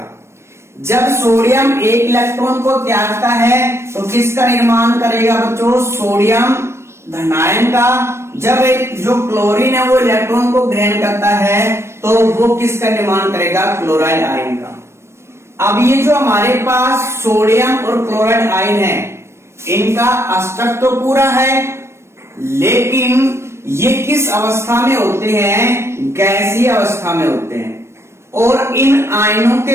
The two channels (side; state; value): left; late; 0.13 ms